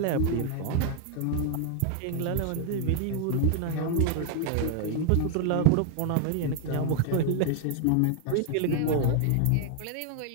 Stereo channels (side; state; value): both; different; correlation 0.00